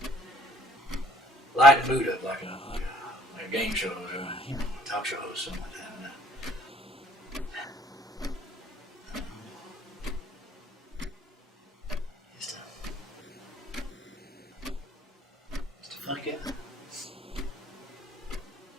light the mood up like a game show or a talk show or something like that. Just a funny guy.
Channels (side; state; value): both; normal; correlation 0.59